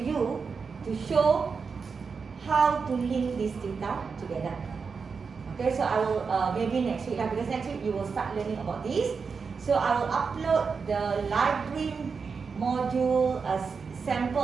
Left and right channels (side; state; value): left; quieter; 5.3 dB